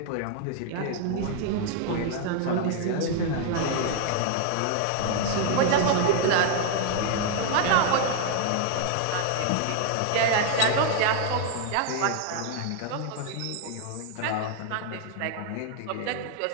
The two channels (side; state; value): both; different; correlation 0.00